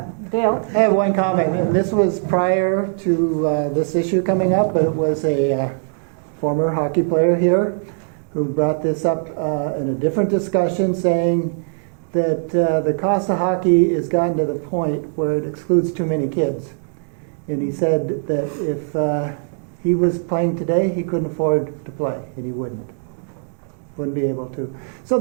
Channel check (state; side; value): silent; left; digital silence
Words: Dale? I have one comment, and this was prior to this issue coming up, but it was a former hockey player here who brought this up in a different discussion, saying that the cost of hockey has gotten to the point where it excludes too many kids. And he said that if he was playing today, he couldn't afford to play, and he wouldn't be able to. So